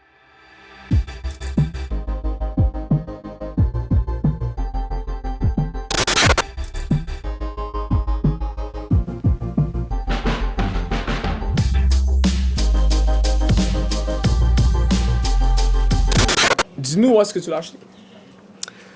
Dis-nous où est-ce que tu l'as acheté.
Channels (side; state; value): both; identical; correlation 1.00